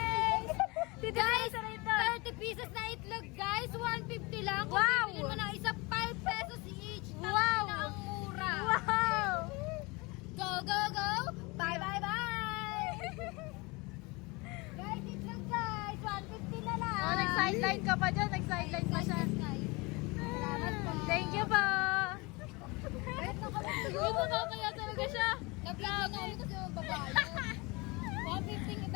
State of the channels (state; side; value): quieter; right; 25.8 dB